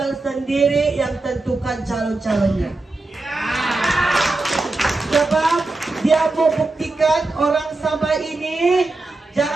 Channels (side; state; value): left; quieter; 3.1 dB